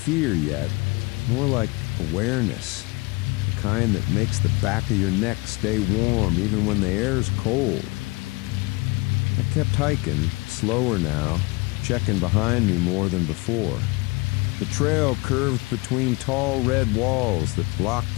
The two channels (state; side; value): quieter; right; 25.0 dB